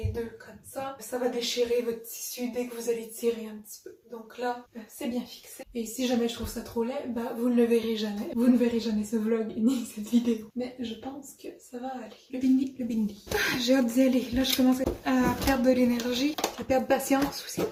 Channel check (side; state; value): both; identical; correlation 1.00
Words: deux comme ça va déchirer votre tissu dès que vous allez tirer un petit peu. Donc là, c'est bien fixé. Et si jamais je trouve ça trop laid, vous ne le verrez jamais. Vous ne verrez jamais ce vlog ni cette vidéo. Mais je pense que ça va aller. Le bindi, le bindi. J'ai hâte d'y aller. Là, je commence à perdre de l'énergie, à perdre patience aussi.